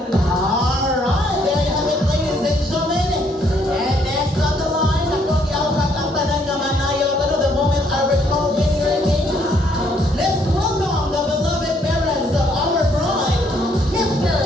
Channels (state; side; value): normal; both; correlation 0.68